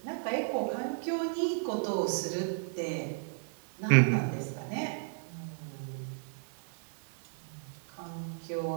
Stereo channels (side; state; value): left; silent; digital silence